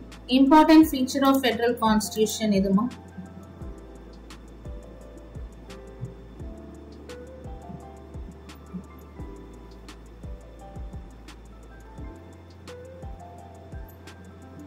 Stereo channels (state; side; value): identical; both; correlation 1.00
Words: Important feature of federal constitution எதுமா?